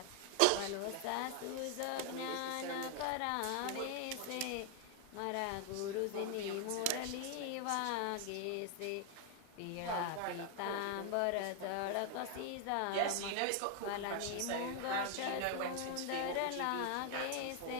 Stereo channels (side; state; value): both; different; correlation 0.00